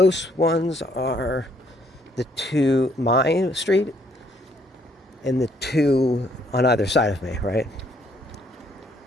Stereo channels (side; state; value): both; normal; correlation 0.67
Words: ones are the two, my street, and the two on either side of me, right?